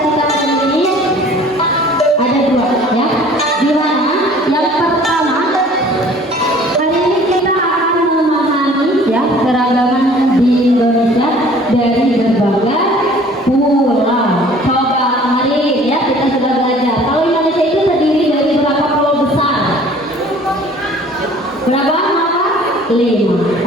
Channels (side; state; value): both; normal; correlation 0.51